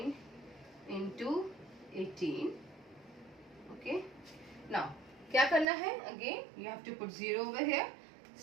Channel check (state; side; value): drops out; left; at 5.7 s